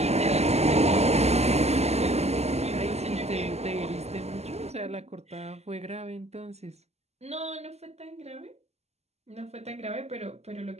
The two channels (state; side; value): late; left; 0.31 ms